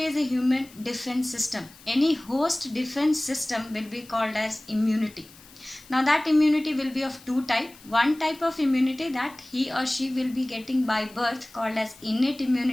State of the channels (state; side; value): noise; left; hiss, 23 dB below the sound